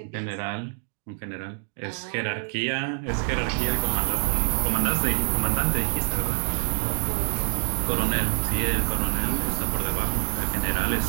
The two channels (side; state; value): left; silent; 60 dB below the other